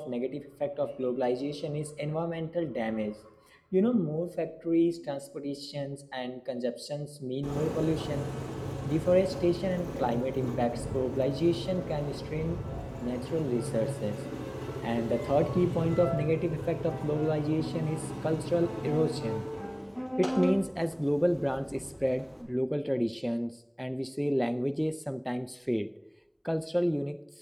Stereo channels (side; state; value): both; identical; correlation 1.00